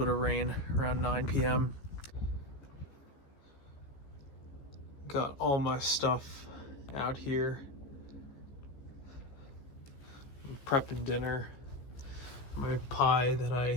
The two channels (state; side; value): late; right; 15 ms